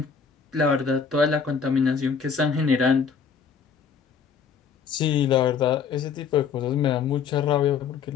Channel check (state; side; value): quieter; right; 6.3 dB